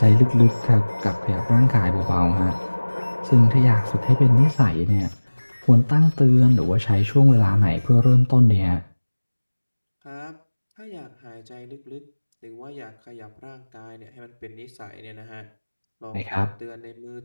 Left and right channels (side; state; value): both; inverted; correlation -1.00